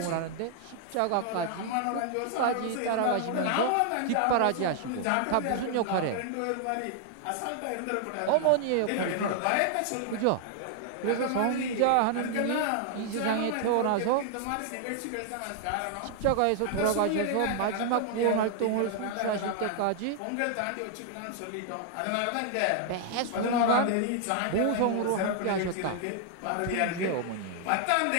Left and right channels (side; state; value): both; different; correlation 0.00